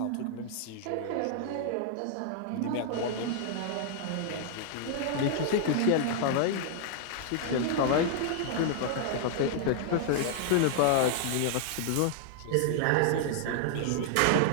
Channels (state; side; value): different; both; correlation -0.01